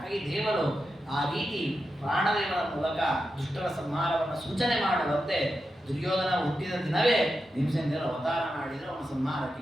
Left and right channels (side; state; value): both; normal; correlation 0.89